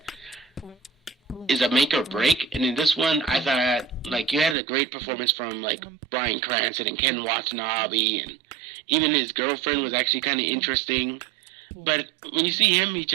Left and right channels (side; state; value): left; drops out; at 4.5 s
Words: is a make or break. And in this one, I thought, like, you had a great performance from, like, Bryan Cranston and Ken Watanabe, and even his girlfriend was actually kind of interesting. But when you see him, he